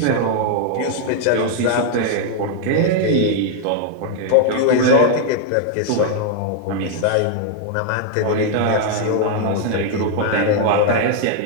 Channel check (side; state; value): both; different; correlation 0.00